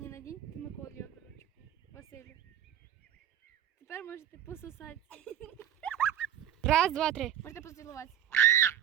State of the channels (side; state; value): left; quieter; 10.5 dB